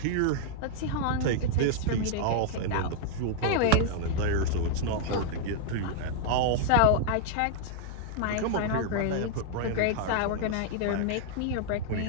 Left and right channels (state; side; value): different; both; correlation -0.01